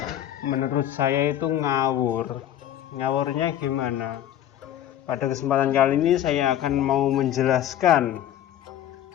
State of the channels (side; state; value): right; quieter; 11.4 dB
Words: menurut saya itu ngawur. Ngawurnya gimana? Pada kesempatan kali ini saya akan mau menjelaskan